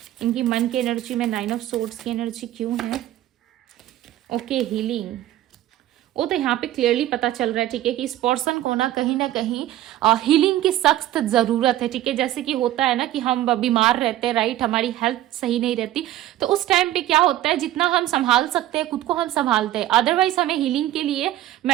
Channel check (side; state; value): left; quieter; 13.9 dB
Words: इनकी मन की एनर्जी में, 9 ऑफ सोर्ड्स की एनर्जी क्यों है। Okay, healing. वो तो यहाँ पे क्लियरली पता चल रहा है। ठीक है, कि इस पर्सन को ना कहीं हीलिंग की सख्त जरूरत है। ठीक है, जैसे कि होता है ना कि हम बीमार रहते हैं, राइट, हमारी हेल्थ सही नहीं रहती, तो उस टाइम पे क्या होता है, जितना हम संभाल सकते हैं खुद को हम संभालते हैं, अदरवाइज हमें हीलिंग के लिए